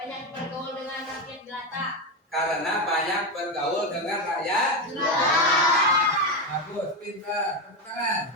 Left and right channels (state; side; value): normal; both; correlation 0.12